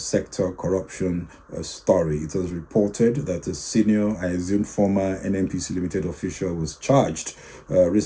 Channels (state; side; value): identical; both; correlation 1.00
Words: corruption story. It was reported that a senior, I assume former NNPC Limited official was charged